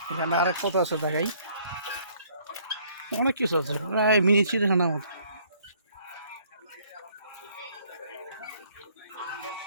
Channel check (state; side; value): inverted; both; correlation -0.62